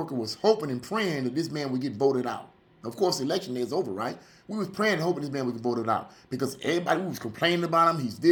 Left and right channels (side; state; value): both; identical; correlation 1.00